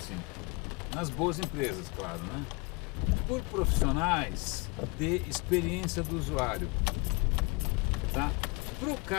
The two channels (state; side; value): quieter; right; 27.1 dB